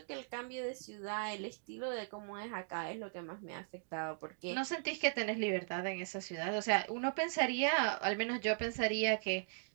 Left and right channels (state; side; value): silent; left; digital silence